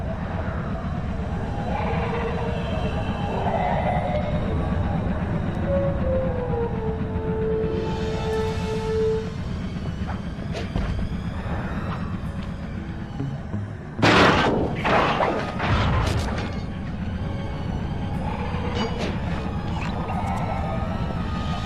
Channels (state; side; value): identical; both; correlation 1.00